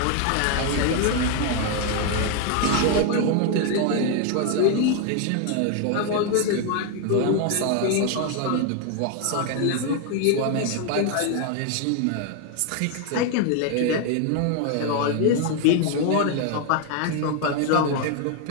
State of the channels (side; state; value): both; different; correlation 0.01